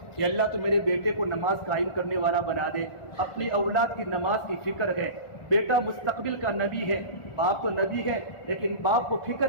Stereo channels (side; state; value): right; late; 1.4 ms